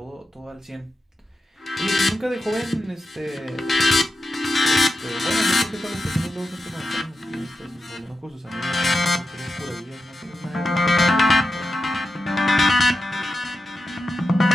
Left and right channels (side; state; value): both; normal; correlation 0.90